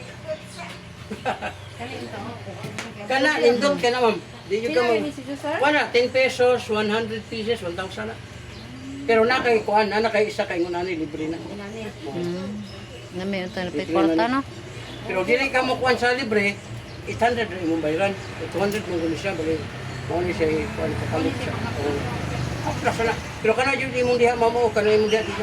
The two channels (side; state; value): both; identical; correlation 1.00